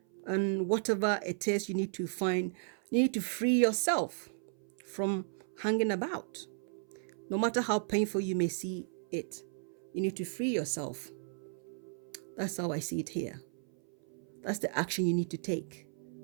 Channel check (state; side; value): silent; left; 55 dB below the other